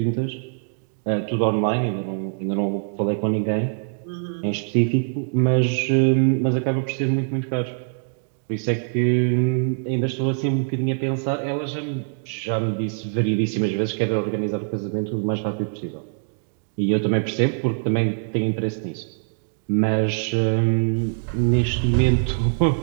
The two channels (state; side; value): silent; left; 61 dB below the other